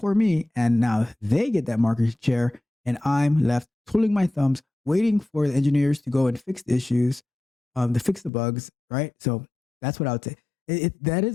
me, and now they get that market share, and I'm left twiddling my thumbs, waiting for the engineers to go and fix the issues, to fix the bugs, right? So that's what I would say.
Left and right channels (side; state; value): right; drops out; at 8.3 s